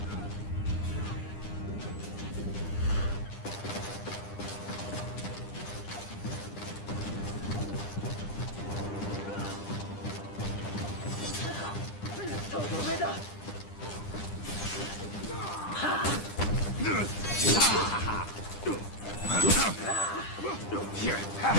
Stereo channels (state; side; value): late; right; 9.9 ms